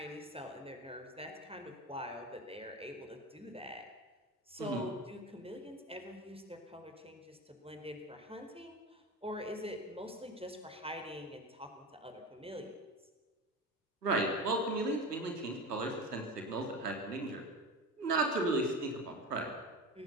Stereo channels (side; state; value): both; normal; correlation 0.27